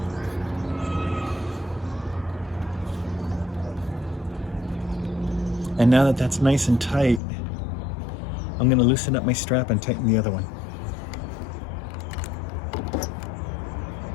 And now that that's nice and tight, I'm going to loosen up my strap and tighten the other one.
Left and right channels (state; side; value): drops out; right; at 7.2 s